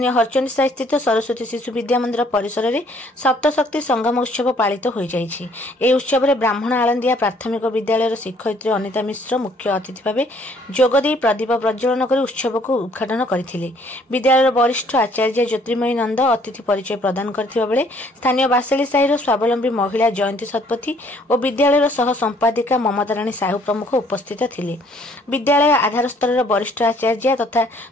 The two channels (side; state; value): both; normal; correlation 0.61